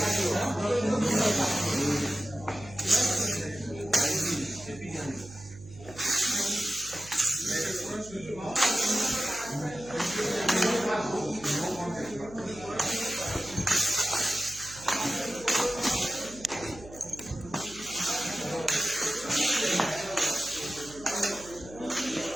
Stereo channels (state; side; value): noise; right; hum, 18 dB below the sound